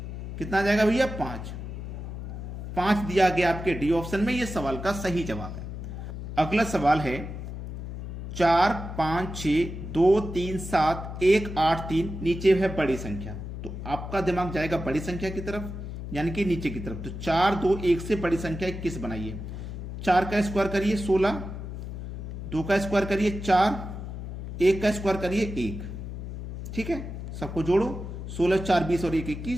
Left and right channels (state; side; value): noise; left; hum, 8 dB below the sound